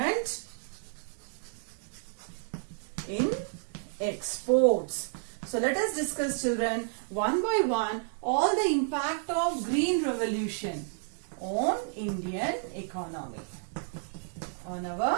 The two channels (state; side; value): silent; left; digital silence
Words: in exports. So let us discuss, children, one by one all the impact of Green Revolution on Indian economy, on